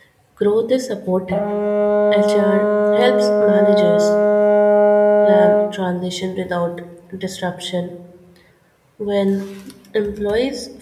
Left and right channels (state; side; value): identical; both; correlation 1.00